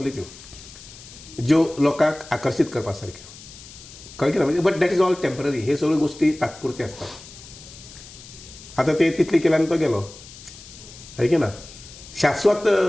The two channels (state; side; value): noise; left; hiss, 18 dB below the sound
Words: त्यो ज्यो लोकांक आकर्शीत करपा सारक्यो, कळ्ळें की ना. म्हणजे but that is all temporary. हे सगळ्यो गोश्टी तात्पुरत्यो असतात. आतां ते तितली केल्यान तो गेलो, है की ना. शाश्वत